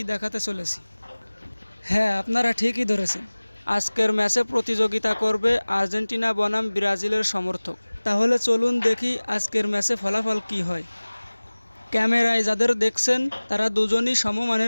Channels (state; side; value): inverted; both; correlation -1.00